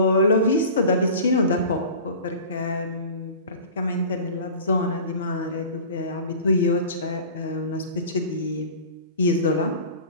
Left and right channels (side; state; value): both; inverted; correlation -0.38